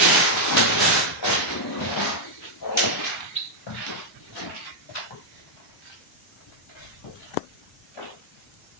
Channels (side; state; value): both; normal; correlation -0.03